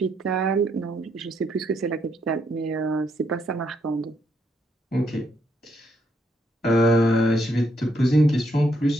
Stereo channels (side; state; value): both; normal; correlation 0.75